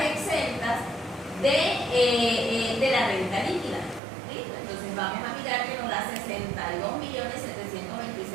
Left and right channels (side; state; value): left; drops out; at 4.0 s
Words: exentas de la renta líquida. ¿Listo? Entonces vamos a mirar que nos da